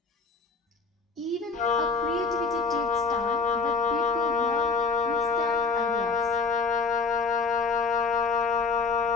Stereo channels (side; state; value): right; quieter; 4.8 dB